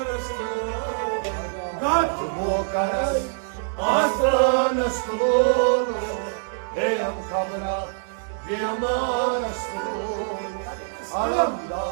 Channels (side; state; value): left; silent; 62 dB below the other